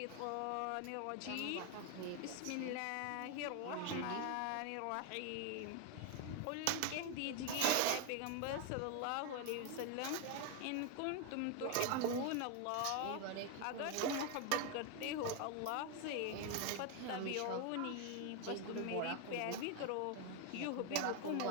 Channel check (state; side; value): different; both; correlation 0.01